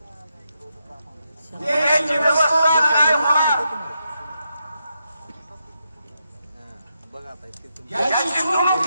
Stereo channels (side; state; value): both; inverted; correlation -0.84